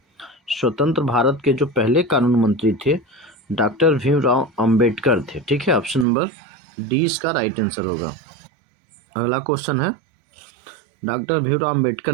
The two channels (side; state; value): left; drops out; at 6.1 s